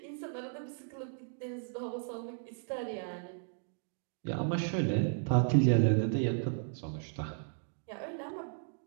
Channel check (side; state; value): left; silent; digital silence